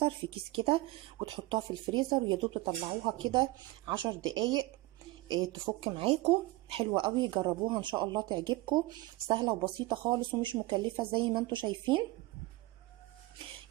في كيس كده وتحطوها في الفريزر، ويا دوب تطلعوها كده 10 دقايق تفك معاكم. حلوه قوي، جربوها ان شاء الله تعجبكم. سهله وبسيطه خالص ومش مكلفه زي ما انتم شايفين.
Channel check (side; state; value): left; quieter; 20.2 dB